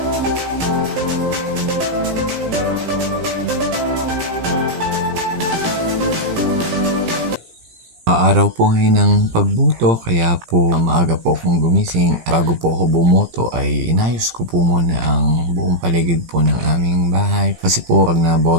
Araw po ngayon ng pagboto, kaya po maaga po akong gumising. Bago po ako bumoto ay inayos ko po muna ang buong paligid po ng aming bahay. Kasi po pag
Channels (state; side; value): late; left; 17 ms